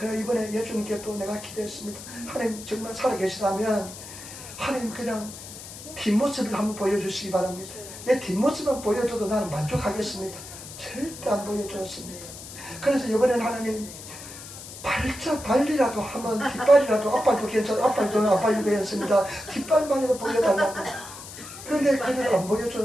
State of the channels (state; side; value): noise; left; hiss, 13 dB below the sound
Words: 이번에 예수님께 또 내가 기도했습니다. 하나님 정말 살아계시다면 하나님 그냥 뒷모습을 한번 보여주시기 바랍니다. 내 뒷모습만 보여줘도 나는 만족하겠습니다. 절대 안 보여줬습니다. 그래서 이번에는 하나님 발이라도 하면 뒷발이라도, 앞발도 괜찮아, 앞발도 아빠 유배했습니다. 뒷발만이라도 보여달라고. 그런데 그래도 안